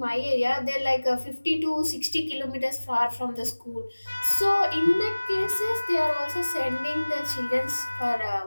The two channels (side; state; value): both; inverted; correlation -1.00